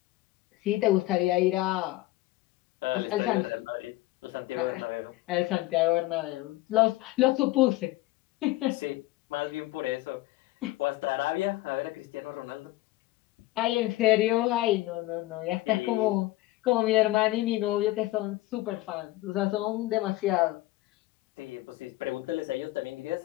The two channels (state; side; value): quieter; right; 18.1 dB